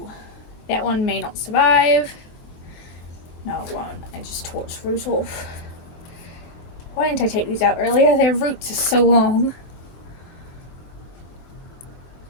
that one may not survive. No, it won't. I just tore its root off. Why didn't I take these out earlier? Their roots are so long.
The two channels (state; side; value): late; right; 24 ms